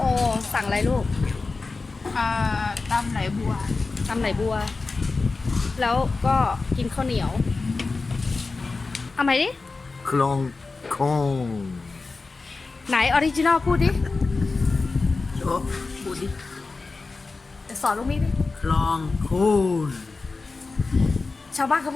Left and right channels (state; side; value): quieter; right; 3.9 dB